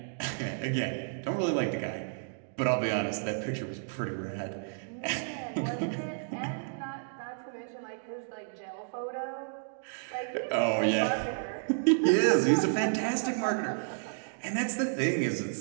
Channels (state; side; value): silent; left; digital silence